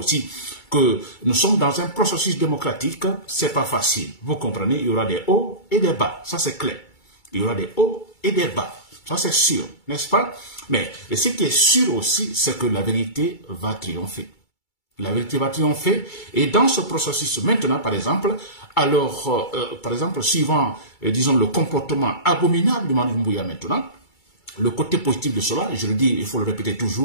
que nous sommes dans un processus démocratique, c'est pas facile. Vous comprenez, il y aura des hauts et des bas, ça c'est clair. Il y aura des hauts et des bas. Ça, c'est sûr, n'est-ce pas? Mais ce qui est sûr aussi, c'est que la vérité va triompher. La vérité va triompher. Et dans ce processus, maintenant, par exemple, alors, par exemple, suivant, disons, le comportement abominable du Manu Doumbouya maintenant, le côté positif de cela, je le dis, il faut le répéter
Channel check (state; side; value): late; right; 2.3 ms